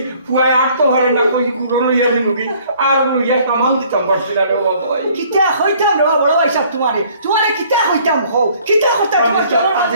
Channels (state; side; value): inverted; both; correlation -0.58